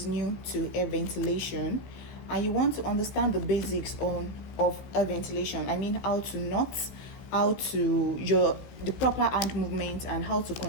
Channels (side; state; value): right; late; 16 ms